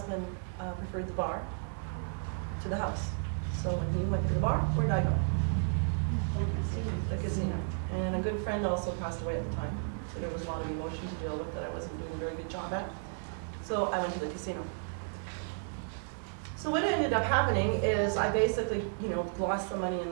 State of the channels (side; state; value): left; silent; digital silence